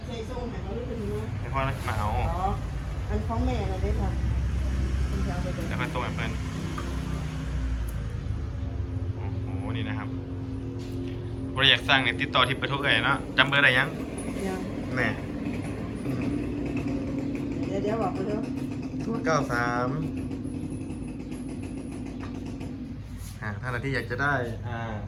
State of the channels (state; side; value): identical; both; correlation 1.00